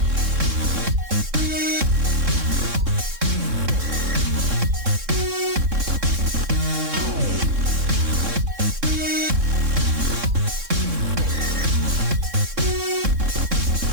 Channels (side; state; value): left; late; 3.6 ms